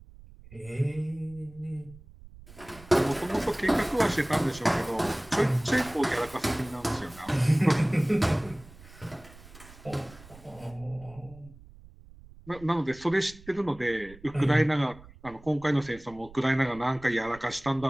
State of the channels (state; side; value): noise; right; rumble, 21 dB below the sound